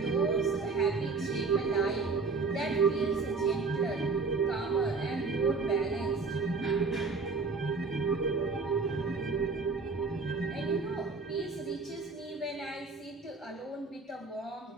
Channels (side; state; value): left; quieter; 4.2 dB